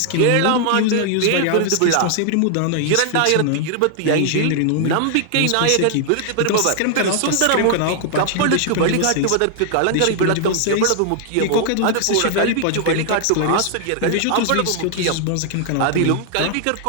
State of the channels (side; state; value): both; different; correlation 0.00